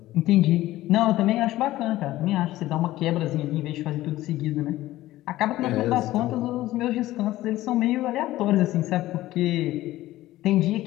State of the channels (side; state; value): right; quieter; 15.9 dB